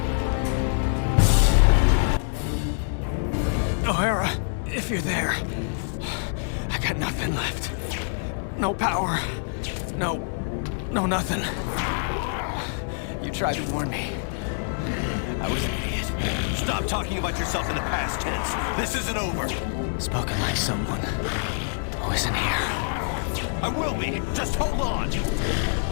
O'Hara, if you're there, I got nothing left. No power. No nothing. You tried to warn me. I was an idiot. Stop talking about yourself in the past tense. This isn't over. Spoken like someone who isn't here. I will be. Just hold on.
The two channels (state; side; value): silent; right; digital silence